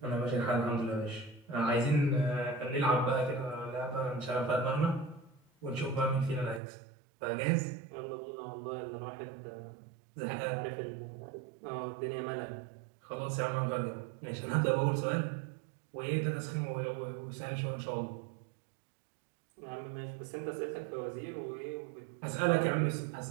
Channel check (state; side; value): drops out; left; at 6.6 s